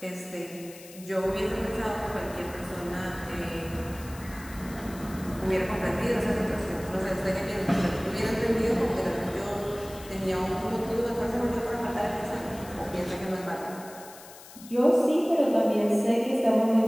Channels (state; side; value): noise; left; hiss, 18 dB below the sound